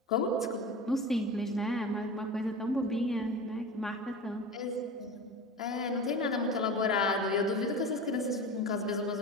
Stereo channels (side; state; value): both; normal; correlation 0.31